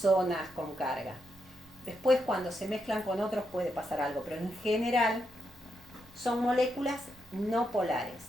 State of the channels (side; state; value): both; normal; correlation 0.82